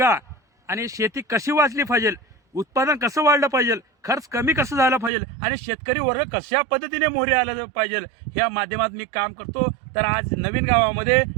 आणि शेती कशी वाचली पाहिजे, उत्पादन कसं वाढलं पाहिजे, खर्च कमी कसं झालं पाहिजे आणि शेतकरी वर्ग कशा पद्धतीने मोहरी आला पाहिजे, ह्या माध्यमात मी काम करतो. तर आज नवीन गावामध्ये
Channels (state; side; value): drops out; left; at 5.1 s